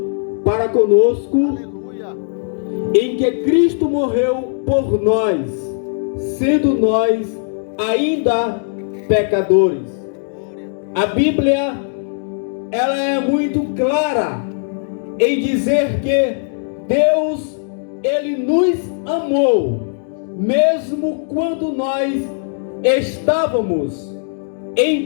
para conosco, em que Cristo morreu por nós, sendo nós ainda pecadores. A Bíblia, ela é muito clara em dizer que Deus, Ele nos amou, mesmo quando nós estávamos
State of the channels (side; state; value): right; silent; digital silence